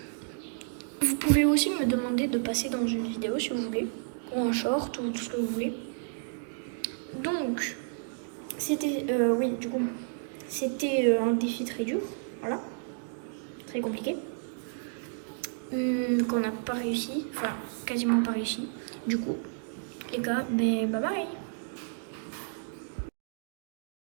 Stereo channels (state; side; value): silent; left; digital silence